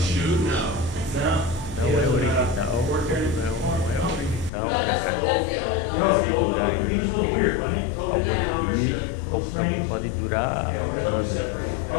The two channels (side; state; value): right; drops out; at 4.5 s